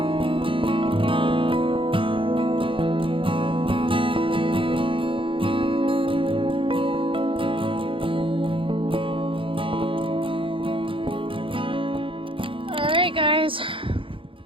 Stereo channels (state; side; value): late; left; 0.25 ms